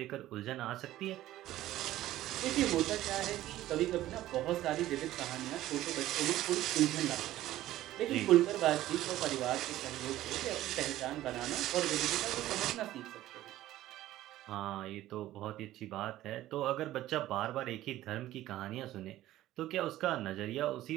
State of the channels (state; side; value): quieter; left; 14.6 dB